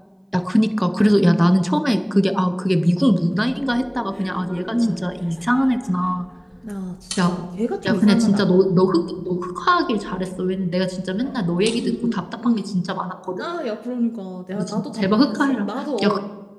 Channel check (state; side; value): identical; both; correlation 1.00